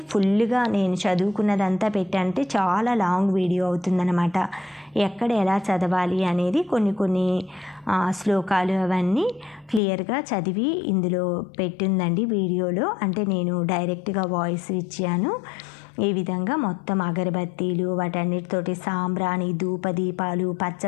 ఫుల్గా నేను చదువుకున్నదంతా పెట్టంటే చాలా లాంగ్ వీడియో అవుతుందన్నమాట. ఎక్కడ ఎలా చదవాలి అనేది కొన్ని శ్లోకాలు అవన్నీ క్లియర్గా చదివి ఇందులో పెట్టిందండి వీడియోలో. అంటే నేను డైరెక్ట్గా వాయిస్ ఇచ్చాను. ఈ విధంగా మొత్తం అగరబత్తీలు వాటన్నిటితోటి సాంబ్రాణి, ధూపదీపాలు,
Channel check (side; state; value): right; drops out; at 9.8 s